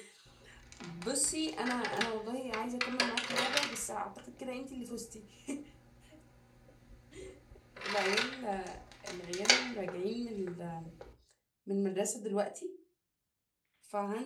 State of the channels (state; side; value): identical; both; correlation 1.00